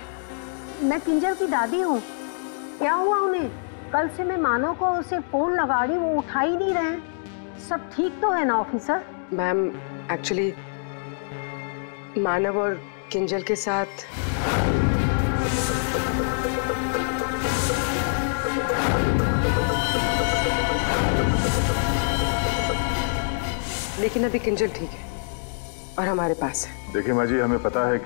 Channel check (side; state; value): right; silent; digital silence